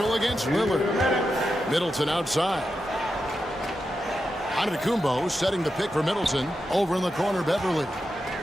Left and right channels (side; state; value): both; normal; correlation 0.88